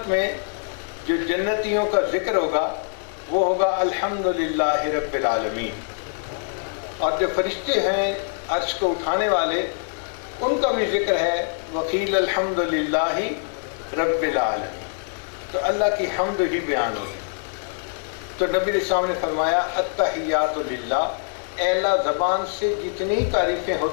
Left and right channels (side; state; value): right; silent; 58 dB below the other